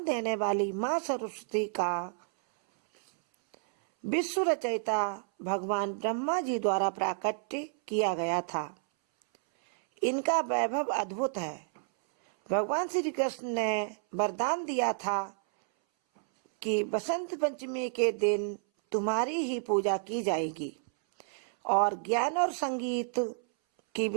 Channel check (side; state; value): left; silent; 58 dB below the other